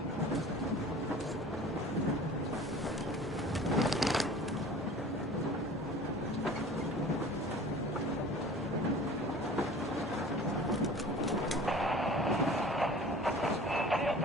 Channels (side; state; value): both; normal; correlation 0.44